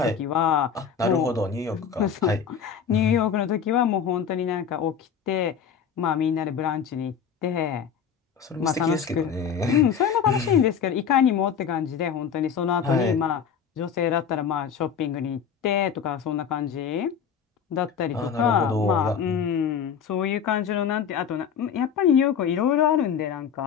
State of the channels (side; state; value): right; quieter; 7.3 dB